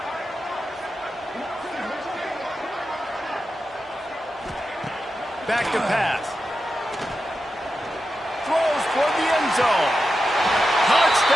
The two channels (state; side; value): normal; both; correlation 0.90